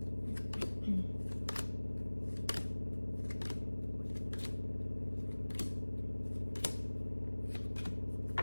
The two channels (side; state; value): both; inverted; correlation -1.00